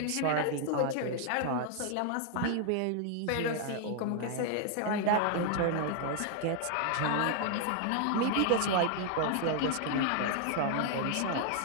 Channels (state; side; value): different; both; correlation 0.00